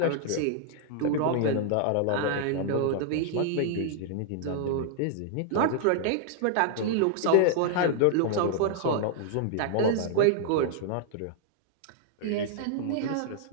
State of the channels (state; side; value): different; both; correlation -0.01